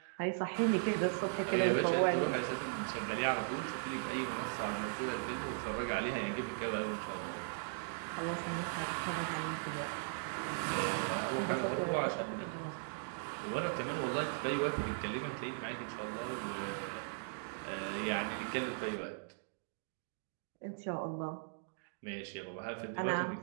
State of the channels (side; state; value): left; silent; digital silence